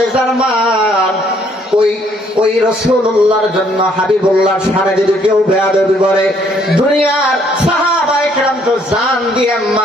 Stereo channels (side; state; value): both; normal; correlation 0.66